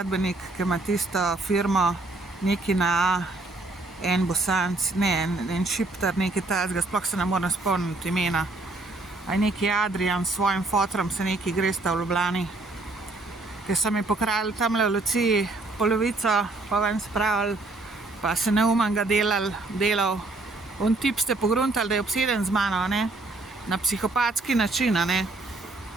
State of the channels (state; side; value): quieter; left; 3.1 dB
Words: ki ima tisto firmo neki na A, en Bosanc, ne, en Šiptar, neki tazga, sploh se ne morem spomniti imena. A je neki Adrian s svojim fotrom se neki gresta v Ljubljani, ki so mi pokrali tamle v Luciji polovico, pa ven spravili, pa se neumen ga delal. On tip ste pogruntali, da je obseden z mano, ne? Na psihopatski način, ne?